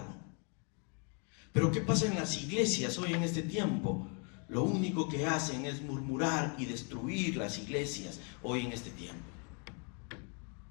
Pero ¿qué pasa en las iglesias hoy en este tiempo? Lo único que hacen es murmurar y destruir las iglesias hoy en este tiempo.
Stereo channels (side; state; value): right; quieter; 37.3 dB